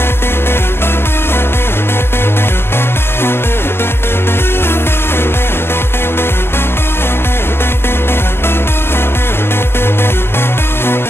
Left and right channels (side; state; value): right; late; 0.11 ms